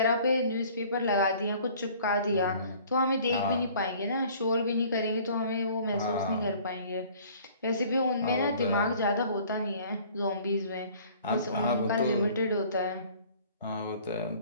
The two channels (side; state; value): both; inverted; correlation -0.52